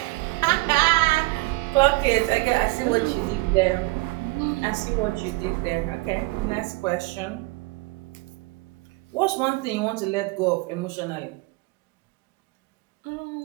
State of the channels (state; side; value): quieter; left; 23.3 dB